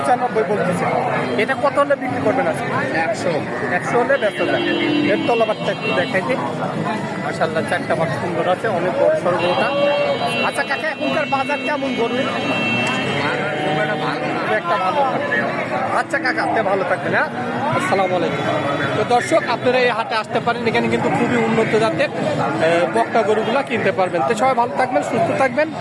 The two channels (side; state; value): both; identical; correlation 1.00